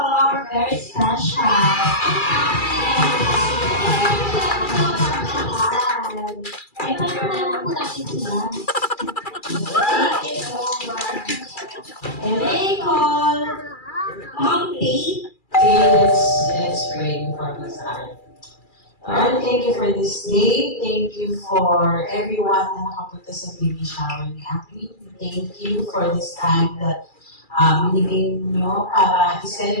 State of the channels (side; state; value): right; late; 2.3 ms